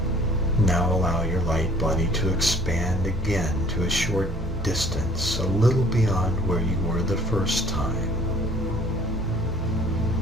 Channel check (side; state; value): both; normal; correlation 0.54